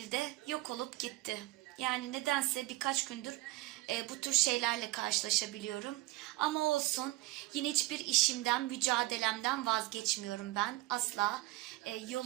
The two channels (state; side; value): quieter; left; 19.2 dB